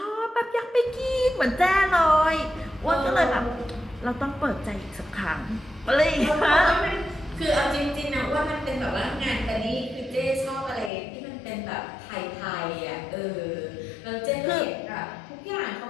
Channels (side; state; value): right; drops out; at 10.9 s